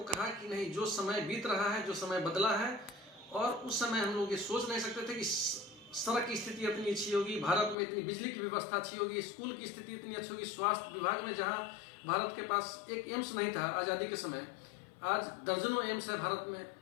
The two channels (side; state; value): right; drops out; at 7.8 s